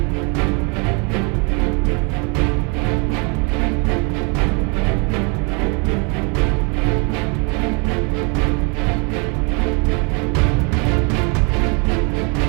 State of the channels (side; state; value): left; quieter; 32.2 dB